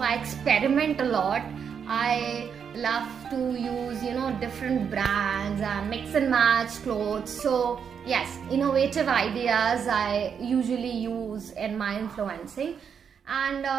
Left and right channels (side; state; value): left; quieter; 7.2 dB